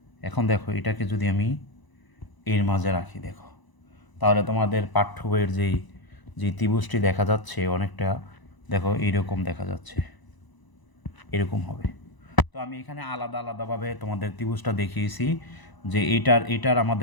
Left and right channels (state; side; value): late; right; 1.0 ms